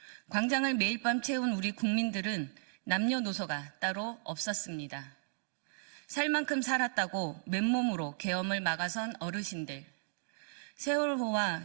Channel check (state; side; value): silent; left; digital silence